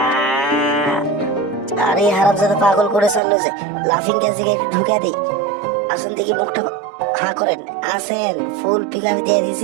আরে হারামজাদা পাগল করে ছাড়লো যে, লাফিং গ্যাসে একটু ঢুকে দিই। আসুন দেখি, মুখটা হা করেন। আসেন, ফুল পিক আপ দিয়ে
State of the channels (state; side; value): drops out; left; at 3.2 s